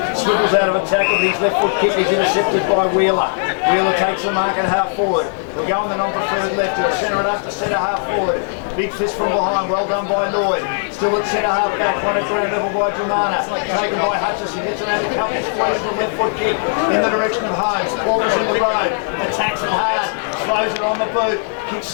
swivels out of a tackle, but his left foot kick is intercepted by Wheeler. Wheeler takes the mark at half forward. He'll go on the non-preferred left. He'll centre it up to centre half forward. Big fist from behind, well done by Lloyd. Still at centre half back, one at ground level by Dromana. Taken by Hutchison, gets around a couple, squeezes the left foot kick in the direction of Holmes. Porter's in the road, attacks it hard, throws it on the boot. Kicks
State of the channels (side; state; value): right; silent; 65 dB below the other